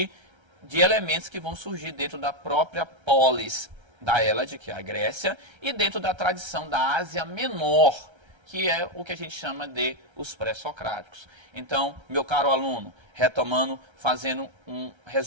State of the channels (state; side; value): late; left; 1.3 ms